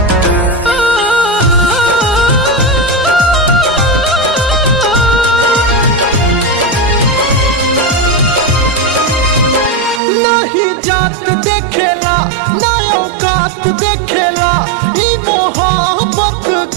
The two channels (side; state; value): left; drops out; at 10.0 s